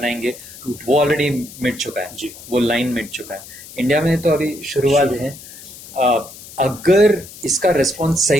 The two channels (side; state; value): left; noise; hiss, 17 dB below the sound